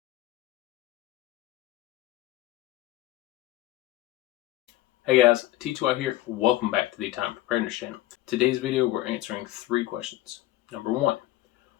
Hey guys, T2I here. Welcome back to the Time Preparedness channel. Today's video, we're answering 3 questions. Number 1,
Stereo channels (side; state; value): right; quieter; 15.9 dB